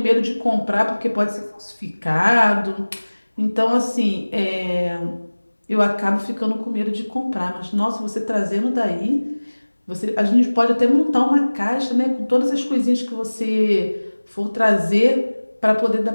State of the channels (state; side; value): inverted; both; correlation -1.00